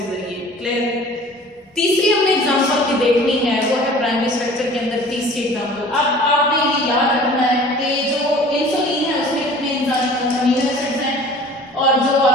जरिए। क्लियर? तीसरी हमने एग्जांपल की देखनी है, वो है प्राइमरी स्ट्रक्चर के अंदर तीसरी एग्जांपल। अब आपने ये याद रखना है कि जो इंसुलिन है उसमें कितने अमीनो एसिड्स हैं और जो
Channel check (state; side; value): normal; both; correlation 0.46